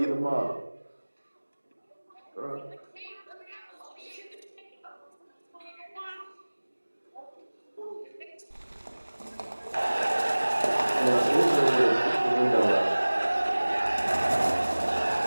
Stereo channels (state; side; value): inverted; both; correlation -1.00